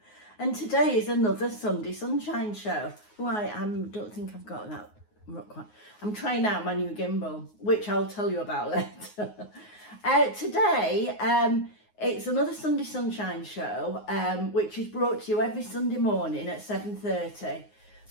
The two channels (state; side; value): late; right; 9.5 ms